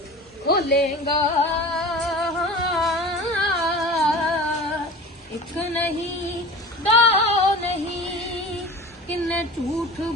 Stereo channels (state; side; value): normal; both; correlation 0.37